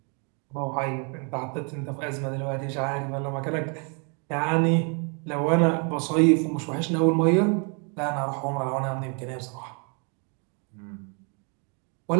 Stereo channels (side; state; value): left; quieter; 37.1 dB